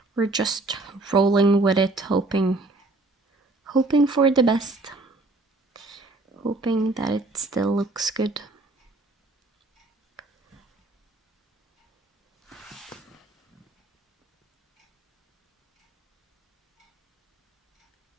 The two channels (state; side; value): quieter; left; 3.0 dB